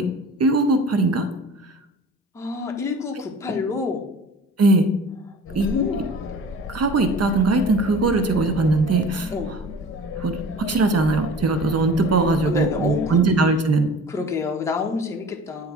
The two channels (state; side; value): normal; both; correlation 0.42